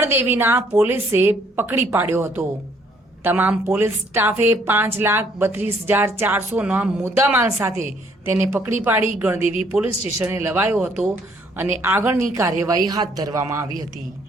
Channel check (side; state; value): both; normal; correlation 0.65